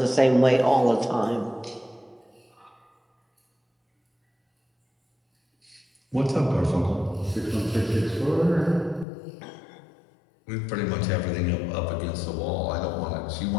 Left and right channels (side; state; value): right; drops out; at 9.1 s